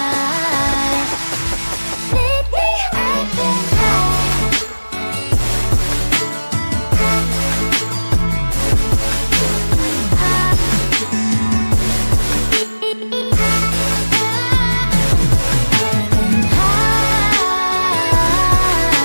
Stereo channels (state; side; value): inverted; both; correlation -1.00